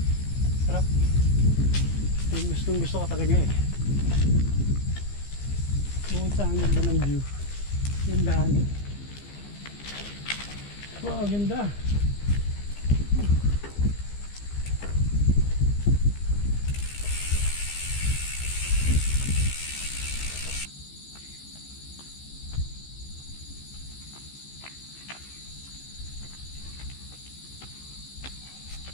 Sarap. Yung gusto ko talaga eh. Bukod sa ang ganda ng view. Yung daan. Wow, ganda.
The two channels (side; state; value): right; late; 15 ms